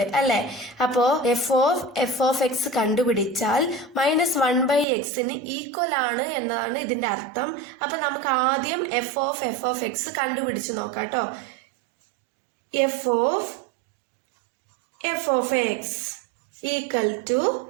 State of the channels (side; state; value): left; drops out; at 4.9 s